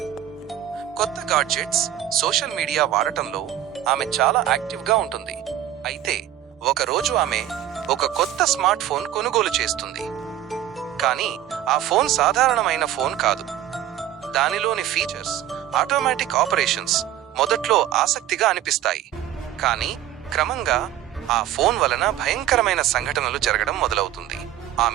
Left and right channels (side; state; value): left; quieter; 11.8 dB